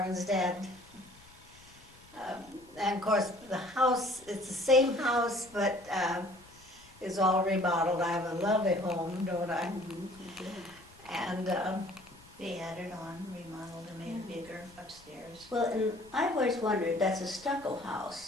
dead. And of course, the house, it's the same house, but is all remodeled. I have a lovely home, don't I? And They added on, remodeled and made it bigger upstairs. Well, and I've always wondered, that's a stucco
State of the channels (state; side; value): noise; left; rumble, 25 dB below the sound